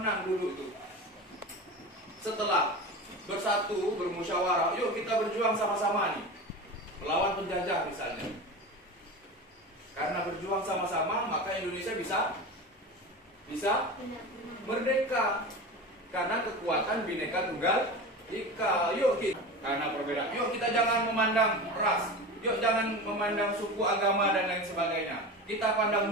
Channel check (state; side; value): normal; both; correlation 0.28